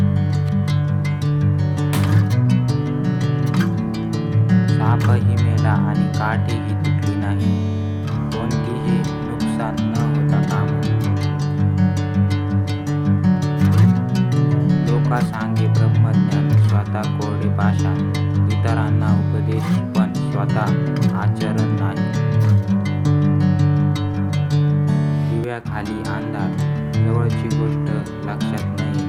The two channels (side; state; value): both; identical; correlation 1.00